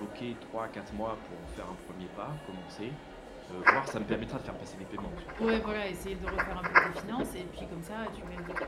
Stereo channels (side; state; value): both; identical; correlation 1.00